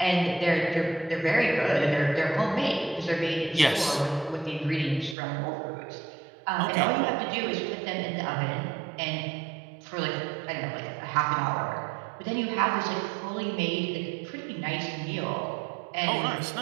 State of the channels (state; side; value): drops out; left; at 5.2 s